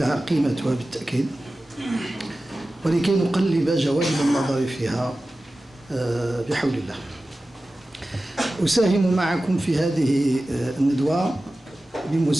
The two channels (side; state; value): both; normal; correlation 0.95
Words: قيمتها بالتأكيد، ولكي نقلب جوانب النظر فيها بحول الله. أساهم معكم في هذه الندوة